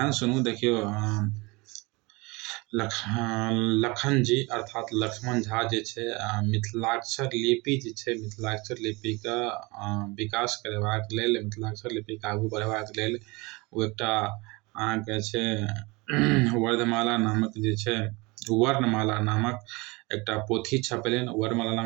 सुनू, देखियौ लखन जी अर्थात लक्ष्मण झा जे छै मिथिलाक्षर लिपि जे छै मिथिलाक्षर लिपिके विकास करेबाक लेल, मिथिलाक्षर लिपिके आगू बढ़ेबाक लेल ओ एकटा अहाँके छै वर्णमाला नामक एकटा पोथी छपेलनि। वर्णमाला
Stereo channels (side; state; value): left; quieter; 25.3 dB